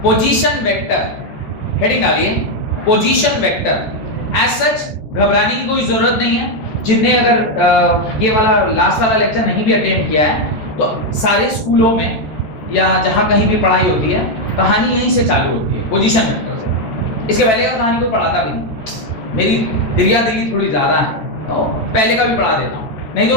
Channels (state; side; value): late; right; 14 ms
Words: पोजीशन वेक्टर, हेडिंग डालिए पोजीशन वेक्टर। एज सच घबराने की कोई जरूरत नहीं है। जिनने अगर ये वाला लास्ट वाला लेक्चर नहीं भी अटेंड किया है तो सारे स्कूलों में या जहां कहीं भी पढ़ाई होती है कहानी यहीं से चालू होती है, पोजीशन वेक्टर से। इसके पहले का कहानी कोई पढ़ाता भी नहीं, मेरी दिल्ली थोड़ी ज्यादा है तो पहले का भी पढ़ा देता हूं, नहीं